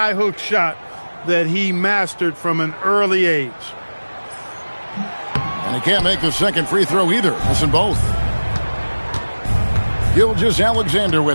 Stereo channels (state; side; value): inverted; both; correlation -1.00